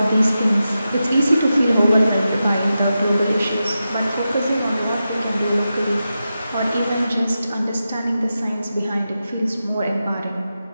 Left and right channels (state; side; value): inverted; both; correlation -0.90